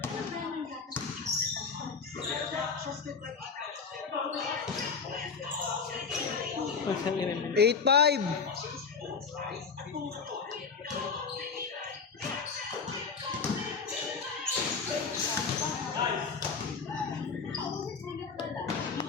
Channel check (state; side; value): quieter; right; 5.4 dB